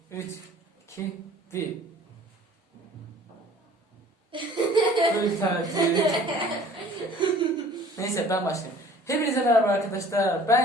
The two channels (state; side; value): normal; both; correlation 0.50